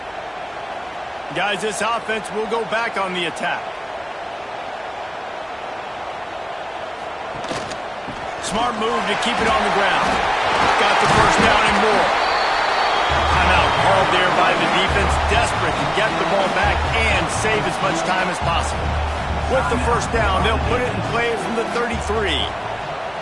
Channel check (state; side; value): identical; both; correlation 1.00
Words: Guys, this offense will go back on the attack. Smart move to keep it on the ground. Got the first down and more. Timeout called there by the defense, desperate to get the ball back and save as much time as possible. With the first down, they'll put it in play from the 33.